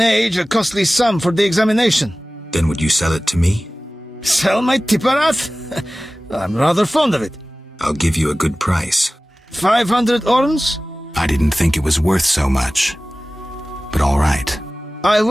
a costly sum for the examination. Then would you sell it to me? Sell my Tipparath? I'm rather fond of it. I'll give you a good price. 500 orns? I didn't think it was worth so much. But all right. I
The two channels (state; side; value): normal; both; correlation 0.97